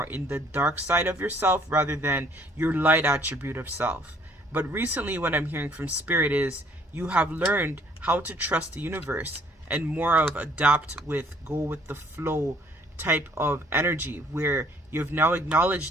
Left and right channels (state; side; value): normal; both; correlation 0.60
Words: in the dark side of yourself rather than your light attribute of self. But recently what I'm hearing from Spirit is you have learned how to trust the universe and more of adapt with, go with the flow type of energy, where you've now